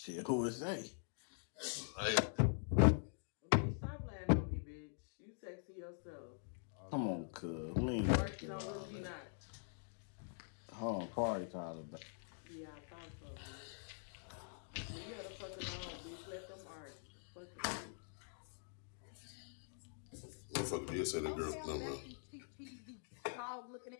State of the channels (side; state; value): right; silent; digital silence